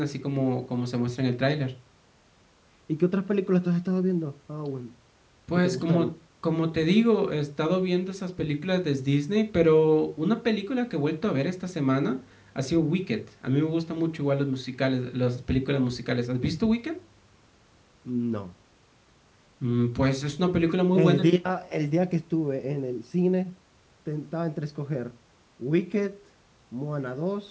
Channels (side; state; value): both; identical; correlation 1.00